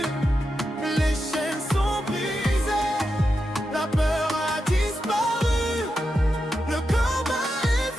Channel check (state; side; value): normal; both; correlation 0.88